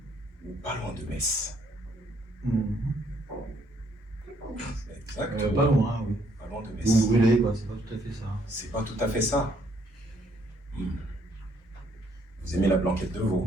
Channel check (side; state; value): both; normal; correlation 0.68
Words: Ou pas loin de Metz. Exactement. Pas loin, oui. Pas loin de Metz. Vous brûlez, quoi, c'est pas tout à fait ça. C'est pas tout à fait ça. Vous aimez la blanquette de veau.